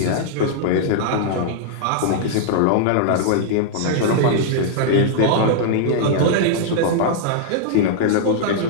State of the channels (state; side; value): different; both; correlation -0.01